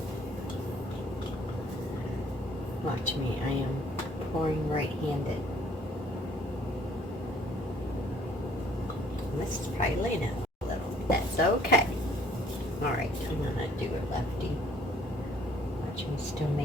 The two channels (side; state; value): both; normal; correlation 0.60